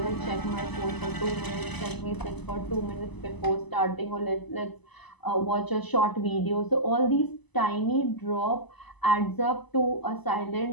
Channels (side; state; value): right; late; 1.0 ms